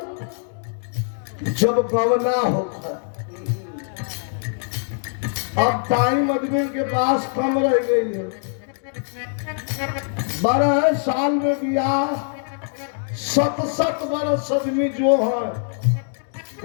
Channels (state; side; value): silent; right; digital silence